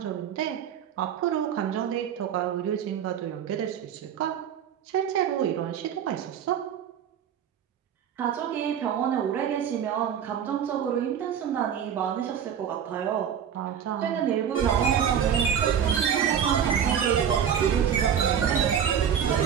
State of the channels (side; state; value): left; quieter; 8.6 dB